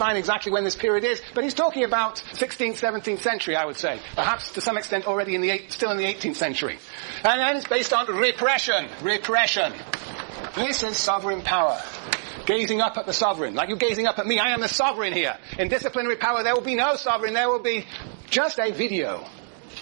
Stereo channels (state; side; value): silent; left; digital silence